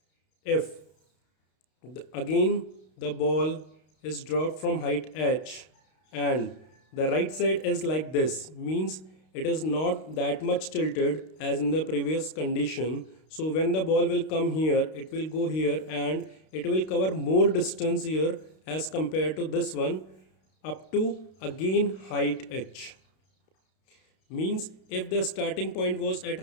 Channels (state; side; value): late; right; 32 ms